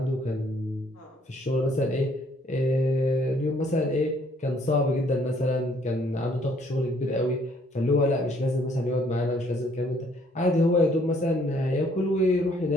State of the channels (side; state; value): both; normal; correlation 0.64